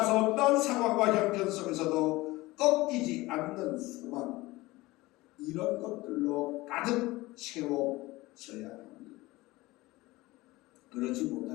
어떤 상황과 형편 속에서도 꺾이지 않는 소망, 이런 것들로 가득 채워져야 합니다. 그렇지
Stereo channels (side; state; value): right; quieter; 20.0 dB